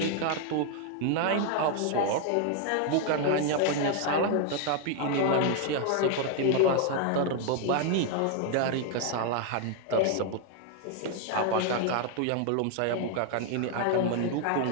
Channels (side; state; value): both; different; correlation 0.00